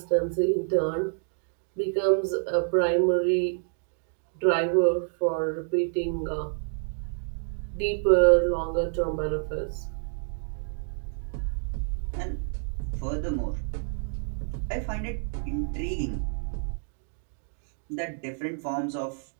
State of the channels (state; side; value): silent; left; digital silence